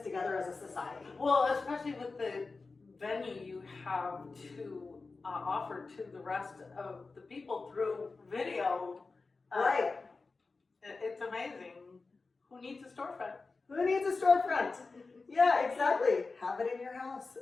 together as a society. Well, especially with the venue you have to offer to the rest of the people through video. Right. It's amazing. Who needs a storefront? Who needs a storefront? Yeah, exactly. Have it in your house.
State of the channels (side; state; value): right; quieter; 4.0 dB